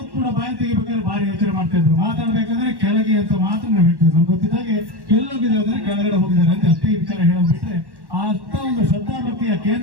ಕೂಡ ಬಾಯಿ ತೆಗಿಬೇಕಾದ್ರೆ ಭಾರಿ ಯೋಚನೆ ಮಾಡ್ತಾ ಇದ್ರು. ಮಾತಾಡ್ಬೇಕಾದ್ರೆ ಕೆಳಗೆ ಅಂತ ಮಾತ್ರ ನಾವು ಹೇಳ್ತಿದ್ವಿ. ನಮ್ಗೆ ಗೊತ್ತಿದ್ದಾಗೆ ಎಲ್ಲೋಗಿದ್ದಾರೆ ಅಂದ್ರೆ ಕೆಳಗಡೆ ಹೋಗಿದ್ದಾರೆ ಅಂತ ಅಷ್ಟೇ ವಿಚಾರ ಹೇಳೋದು ಬಿಟ್ರೆ, ಅಂತ ಒಂದು ಶ್ರದ್ಧಾಭಕ್ತಿಯ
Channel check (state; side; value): late; left; 1.1 ms